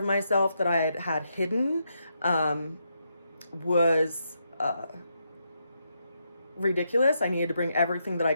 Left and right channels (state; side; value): inverted; both; correlation -0.81